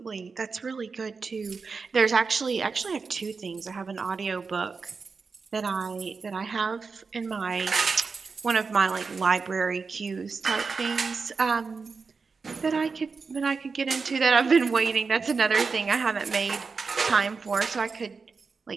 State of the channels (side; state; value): left; quieter; 4.8 dB